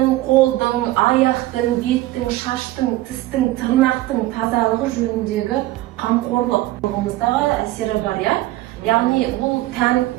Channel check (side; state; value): left; quieter; 16.9 dB